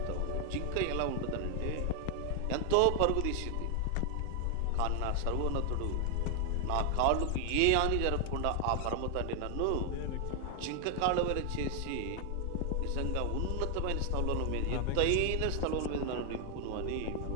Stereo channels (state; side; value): different; both; correlation 0.00